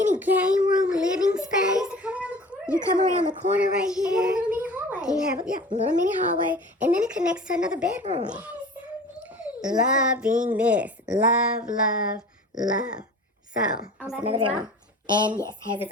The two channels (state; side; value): normal; both; correlation 0.41